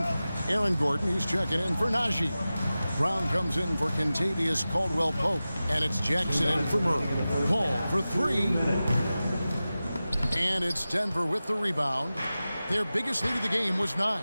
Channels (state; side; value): inverted; both; correlation -0.95